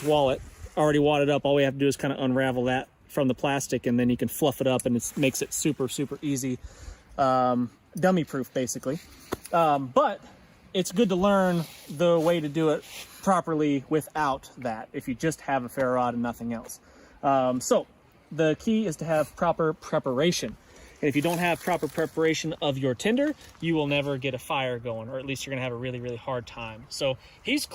wallet, already wadded up. All we have to do is kind of unravel that from the plastic, and then you can fluff it up, and it makes it super easy, dummy proof basically. But it's good to learn the way to do it properly without that, if you just have a ferro rod and nothing else. So the key is to have proper preparation, and if you don't have proper preparation of your tinder, you will never get a fire going, or at least you're gonna have a really hard time. So he's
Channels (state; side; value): identical; both; correlation 1.00